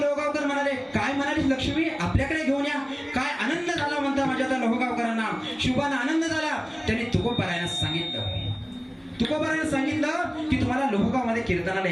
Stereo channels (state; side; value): identical; both; correlation 1.00